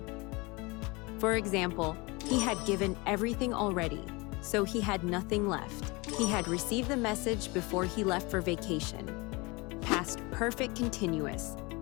For example, he had given everything already, so he had nothing left. He had received the message before he left for vacation. Past perfect continuous.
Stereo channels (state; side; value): quieter; right; 25.9 dB